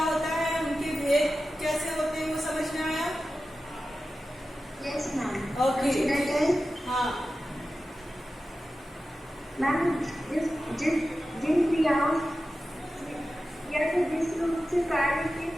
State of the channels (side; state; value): both; normal; correlation 0.93